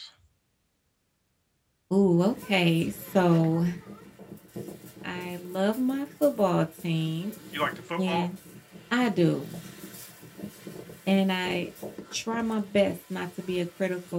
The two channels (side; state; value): both; identical; correlation 1.00